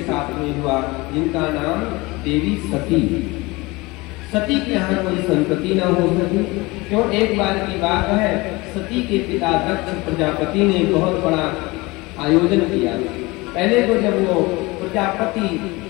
साथ में हुआ, जिनका नाम देवी सती। सती के यहाँ कोई संतति न हो सकी। क्यों? एक बार की बात है, सती के पिता दक्ष प्रजापति ने बहुत बड़ा आयोजन किया। पहले तो जब वो प्रजापति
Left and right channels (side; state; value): right; quieter; 23.0 dB